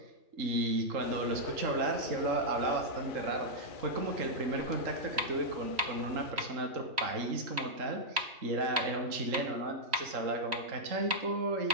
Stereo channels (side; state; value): left; late; 3.1 ms